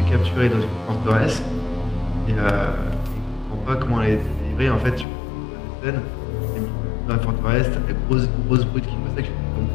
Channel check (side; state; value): right; drops out; at 5.1 s